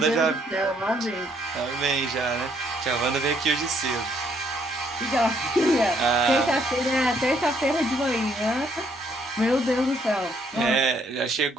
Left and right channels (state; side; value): normal; both; correlation 0.69